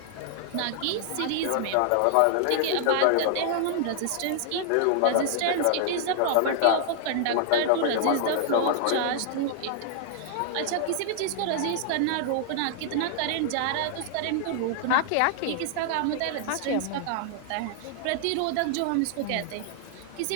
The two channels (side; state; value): both; different; correlation -0.01